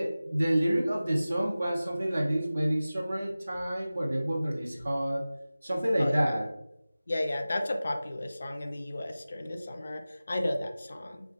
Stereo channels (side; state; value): both; inverted; correlation -0.97